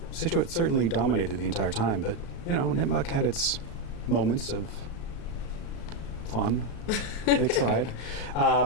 Scituate certainly dominated the entire time, but, Nipmuc had its moments of fun. They tried.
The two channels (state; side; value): late; right; 36 ms